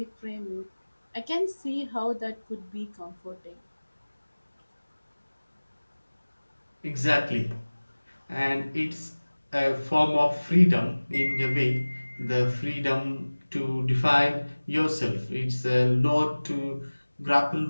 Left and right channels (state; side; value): inverted; both; correlation -1.00